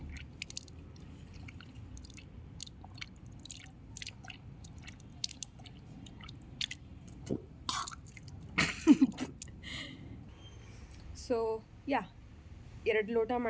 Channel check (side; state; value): both; identical; correlation 1.00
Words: So yeah 2 ಲೋಟ